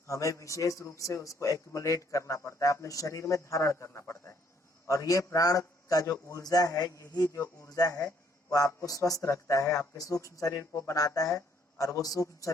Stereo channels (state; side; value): normal; both; correlation 0.67